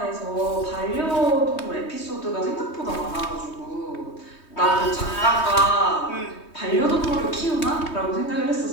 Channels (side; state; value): right; late; 3.2 ms